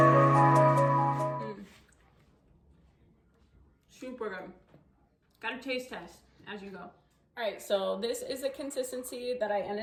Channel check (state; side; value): identical; both; correlation 1.00